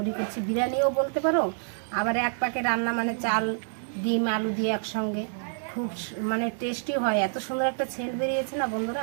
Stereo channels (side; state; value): left; silent; 60 dB below the other